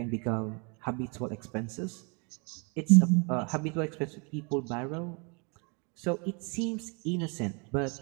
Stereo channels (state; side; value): quieter; left; 33.7 dB